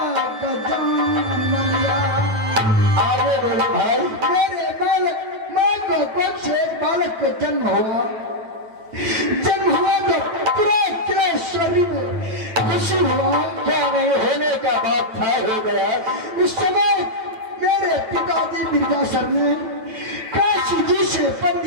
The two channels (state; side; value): late; left; 9.1 ms